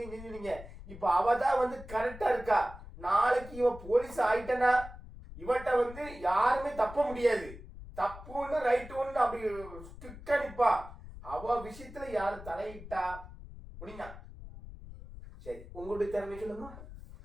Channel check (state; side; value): noise; left; rumble, 15 dB below the sound